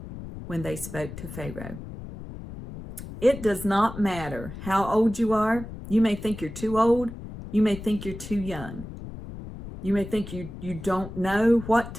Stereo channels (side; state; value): left; noise; rumble, 11 dB below the sound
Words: when they spoke to Pharaoh. It does not matter how old you are. You may think you're too old. You may think you're too young. You may think you don't know what